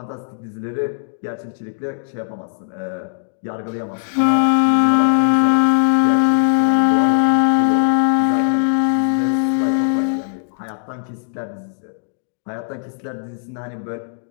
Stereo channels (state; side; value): silent; right; digital silence